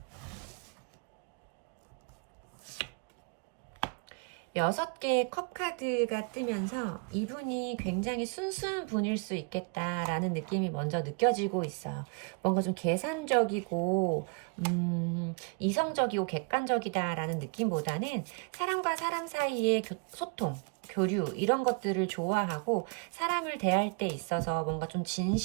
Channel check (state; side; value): quieter; left; 33.9 dB